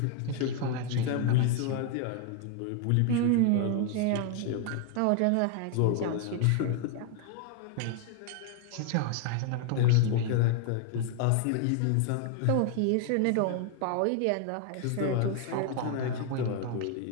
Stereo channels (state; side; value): different; both; correlation 0.00